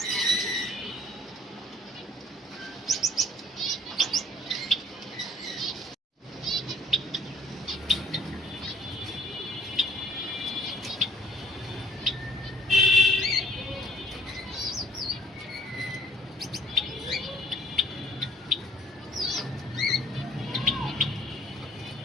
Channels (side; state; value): both; normal; correlation 0.57